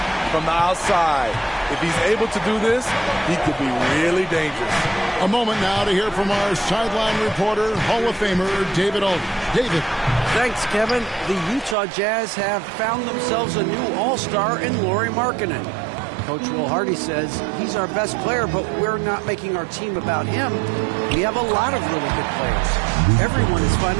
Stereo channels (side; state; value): left; drops out; at 11.8 s